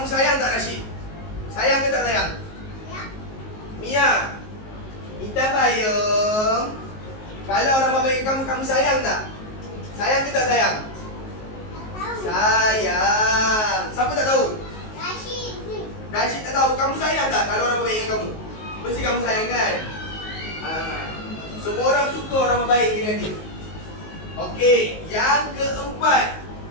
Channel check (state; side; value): late; right; 19 ms